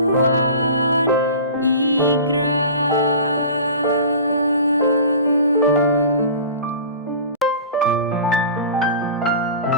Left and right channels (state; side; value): inverted; both; correlation -0.38